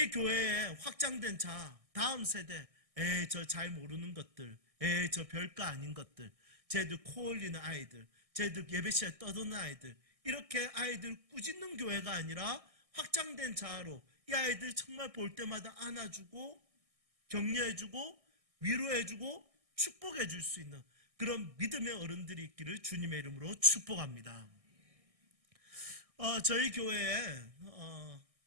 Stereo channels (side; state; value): left; late; 1.6 ms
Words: 교회에 확장된 자아, 다음 세대, 저 잘 모르는 것들, 저 별거 아닌 것들, 쟤들 코 올리는 아이들, 쟤들 예배 시간에 떠드는 아이들, 이렇게 아이들 꾸짖는 교회가 아니라 확장된 자아로 이 아이들 정말 볼 때마다 안아주고 격려해주고 위로해주고 축복해줄 수 있는 그런 믿음의 어른들이 있기를 주님의 이름으로 축복합니다. 저희 교회에